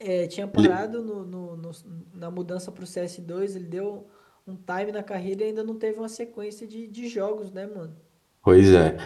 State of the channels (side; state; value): both; identical; correlation 1.00